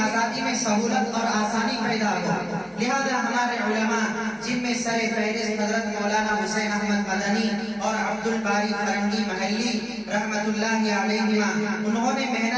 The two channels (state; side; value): identical; both; correlation 1.00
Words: آزادی میں سہولت اور آسانی پیدا ہو۔ لہذا ہمارے علماء، جن میں سر فہرست حضرت مولانا حسین احمد مدنی اور عبد الباری فرنگی محلی رحمت اللہ علیہما، انہوں نے